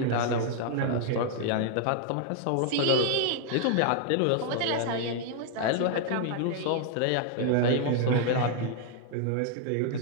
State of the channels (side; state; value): both; different; correlation 0.00